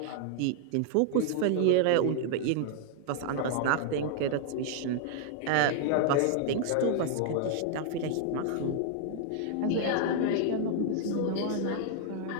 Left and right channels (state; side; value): different; both; correlation 0.00